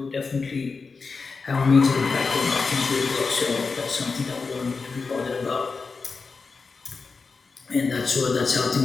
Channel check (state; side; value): quieter; right; 4.6 dB